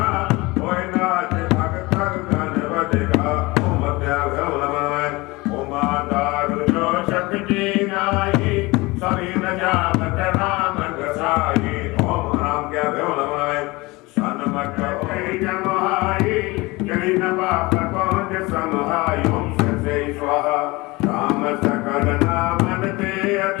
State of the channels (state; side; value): quieter; right; 22.9 dB